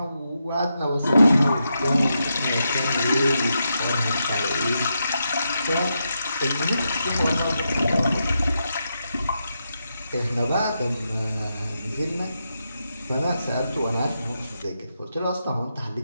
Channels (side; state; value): both; inverted; correlation -0.85